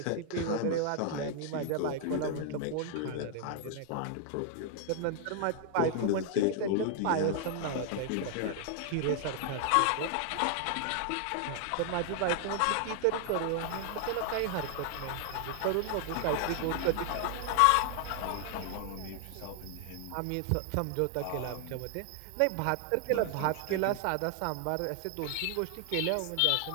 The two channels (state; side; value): different; both; correlation 0.00